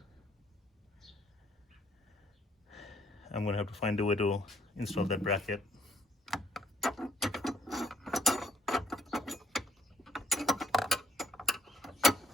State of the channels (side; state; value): both; normal; correlation 0.67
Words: I'm going to have to find a way to install that bracket.